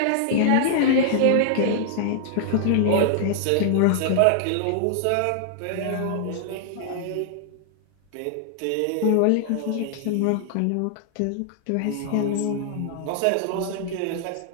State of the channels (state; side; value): different; both; correlation -0.01